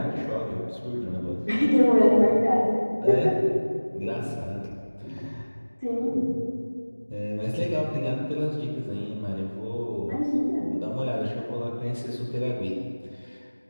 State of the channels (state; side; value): inverted; both; correlation -1.00